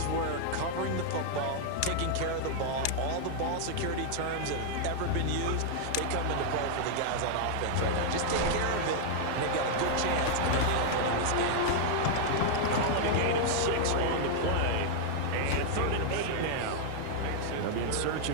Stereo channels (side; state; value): both; different; correlation -0.01